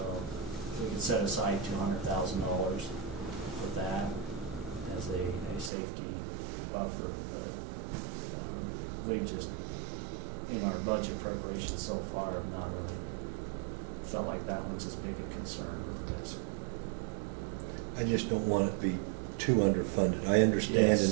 we could set aside $200,000 for that as a safety buffer. But we just, in our budget preparation so far, have not really felt like that one's as big a concern as. I just don't want it to be too underfunded. I understand and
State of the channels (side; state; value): left; drops out; at 5.7 s